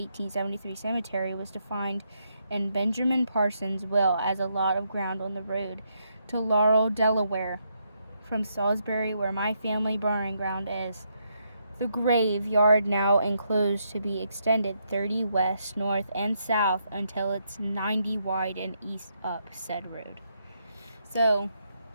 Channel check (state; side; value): inverted; both; correlation -0.78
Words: cemetery was defined in Benjamin Parsons' will as a lot of ground on the road to Laurel, Delaware, from Salisbury, where my family burying ground is. The graveyard now enclosed to be extended 30 west, north, and south until it's 90 wide and east up said road. So